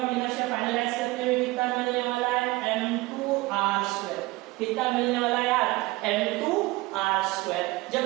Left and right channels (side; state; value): left; quieter; 21.2 dB